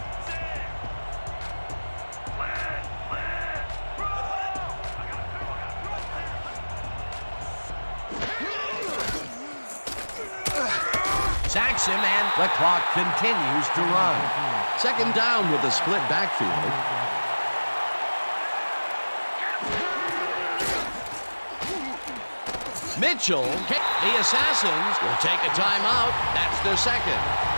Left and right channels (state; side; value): inverted; both; correlation -1.00